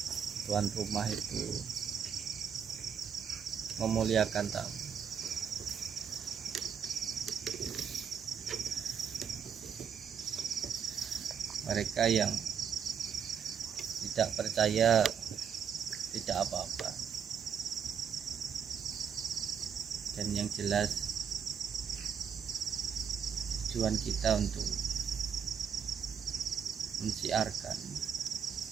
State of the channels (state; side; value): quieter; left; 7.4 dB